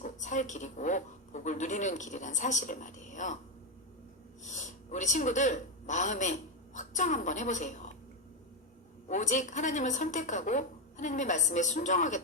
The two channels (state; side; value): normal; both; correlation 0.08